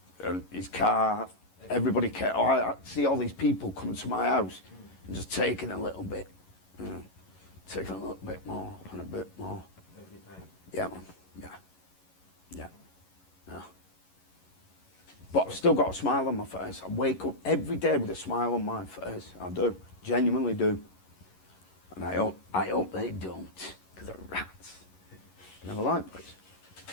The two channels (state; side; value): late; right; 11 ms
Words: and his car. Everybody cared. I see all these people coming to my house and just taking a little bit, taking a little bit more and a bit more. Every time. Yeah, man. Yeah. But I've still got a smile on my face. I wake up every day with a smile on my face. I do. Genuinely do. And I hope they don't, because they're rats. Never like this.